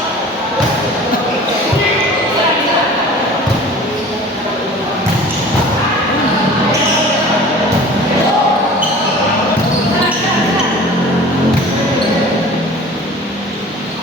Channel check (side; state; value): both; normal; correlation 0.43